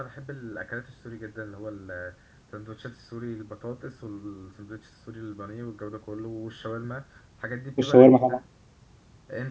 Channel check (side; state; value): both; identical; correlation 1.00